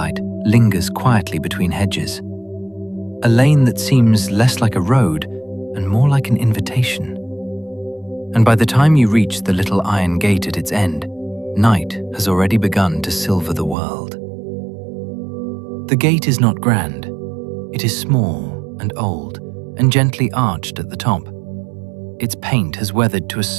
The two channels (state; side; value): drops out; left; at 13.8 s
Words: lingers quietly between hedges, a lane that seems less like a road and more like an invitation. And by the time you reach the little iron gate at its end, night has already begun to silver the world. The gate is not grand. It is small and old and gently arched at the top. Its paint has weathered to a